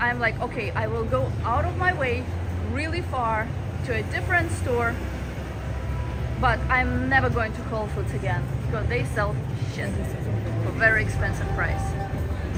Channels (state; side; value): identical; both; correlation 1.00